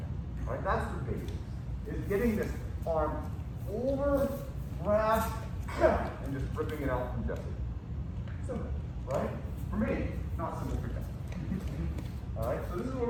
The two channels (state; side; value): identical; both; correlation 1.00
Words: All right, that's the basics. Is getting this arm over, grab, and just ripping it out from Jesse. Simple, right? For me, not simple for Jesse. All right, so this is where